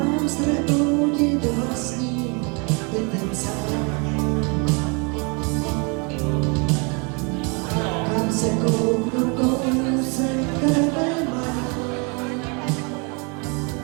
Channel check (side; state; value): left; quieter; 32.6 dB